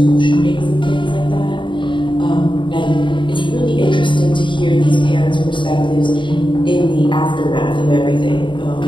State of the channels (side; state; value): right; late; 0.23 ms